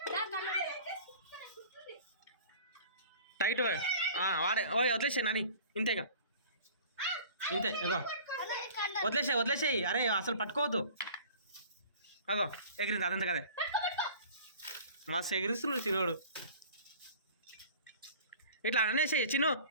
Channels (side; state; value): both; inverted; correlation -0.44